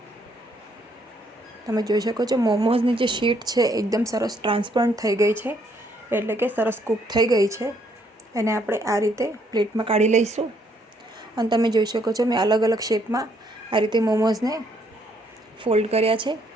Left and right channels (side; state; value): both; normal; correlation 0.69